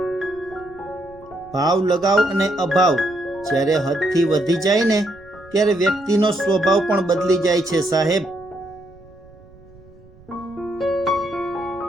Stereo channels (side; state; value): right; noise; rumble, 25 dB below the sound